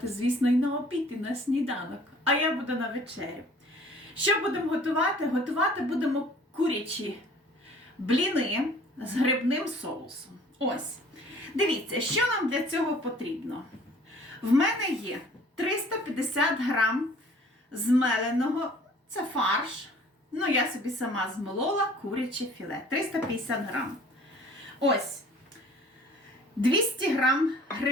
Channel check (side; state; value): both; normal; correlation 0.51